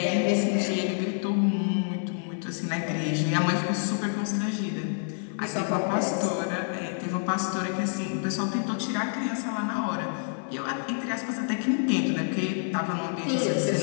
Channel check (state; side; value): silent; right; digital silence